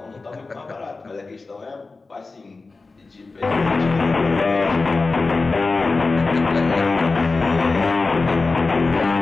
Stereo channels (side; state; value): right; quieter; 3.8 dB